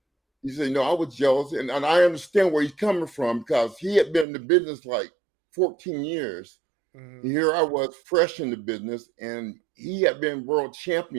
He said, I was jealous, and I understand where he's coming from because he had been in the business like 14 years. Mm-hmm. Here I was fresh in the business, and he had been world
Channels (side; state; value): left; drops out; at 4.2 s